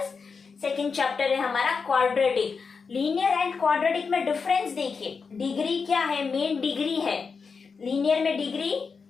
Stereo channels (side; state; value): right; quieter; 5.2 dB